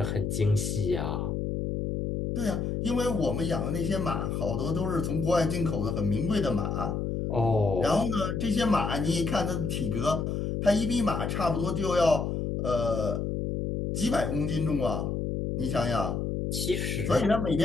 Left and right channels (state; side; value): noise; left; hum, 1 dB below the sound